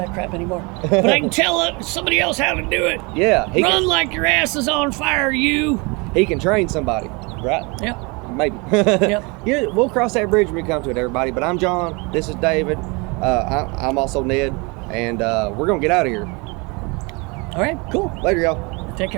crap anymore. But I can tell somebody else how to do it. Yeah. Run like your ass is on fire, you. He can train somebody, right? Yep. Maybe. Yep. Yeah, we'll cross that bridge when we come to it, everybody. But I'm John. This is David. I'm also Ned, and we're gonna get out of here. All right. Cool. Later, y'all. Take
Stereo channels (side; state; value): left; quieter; 28.6 dB